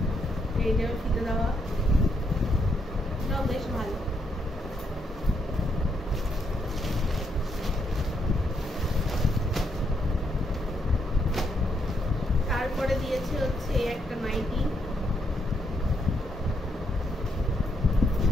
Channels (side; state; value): both; normal; correlation 0.76